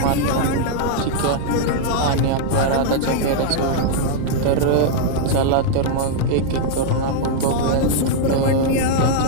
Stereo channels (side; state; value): both; different; correlation -0.01